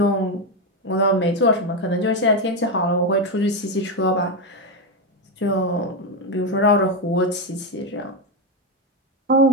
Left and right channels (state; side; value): normal; both; correlation 0.08